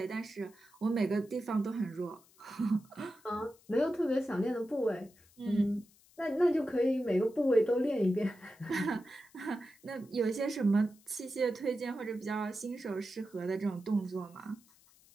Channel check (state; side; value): noise; left; hiss, 28 dB below the sound